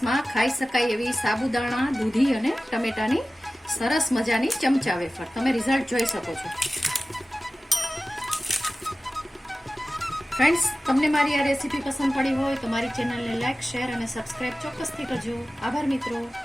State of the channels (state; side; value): normal; both; correlation 0.96